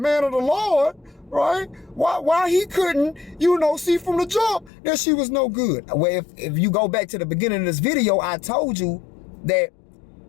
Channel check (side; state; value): right; drops out; at 4.7 s